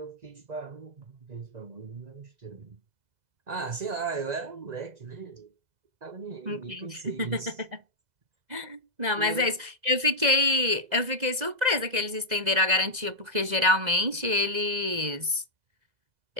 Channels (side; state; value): left; late; 2.0 ms